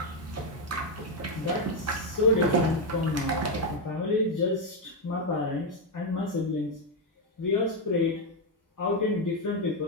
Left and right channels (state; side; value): normal; both; correlation 0.03